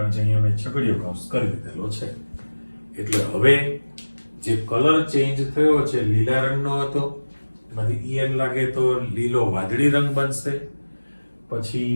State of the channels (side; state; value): both; inverted; correlation -1.00